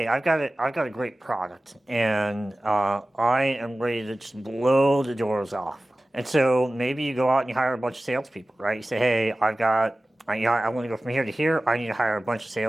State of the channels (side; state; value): both; normal; correlation 0.97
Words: I've got a great product, and I am ready to just blow the doors off. And so maybe you go out and you hire a bunch of salespeople, right? You say, hey, I want to go from here to here. I need to hire a bunch of